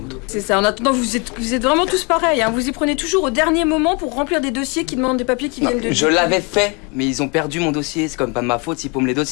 C'est ça. En attendant, vous êtes vraiment tous pareils, hein. Vous y prenez toujours au dernier moment pour remplir des dossiers qui demandent des papiers qui viennent de... Je l'avais fait, mais ils ont perdu mon dossier. C'est quand même pas de ma faute s'ils paument les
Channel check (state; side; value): quieter; right; 31.5 dB